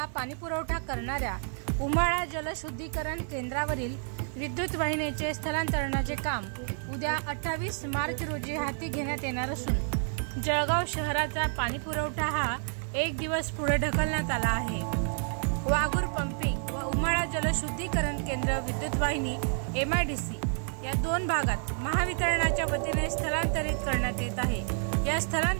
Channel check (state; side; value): silent; left; 58 dB below the other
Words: पाणीपुरवठा करणाऱ्या उमाळा जलशुद्धीकरण केंद्रावरील विद्युत वाहिनीचे स्थलांतरणाचे काम उद्या 28 मार्च रोजी हाती घेण्यात येणार असून जळगाव शहराचा पाणीपुरवठा हा एक दिवस पुढे ढकलण्यात आला आहे। वाघूर पंपिंग व उमाळा जलशुद्धीकरण केंद्र विद्युत वाहिनी MIDC या दोन भागात महावितरणाच्या वतीने स्थलांतरित करण्यात येत आहे। या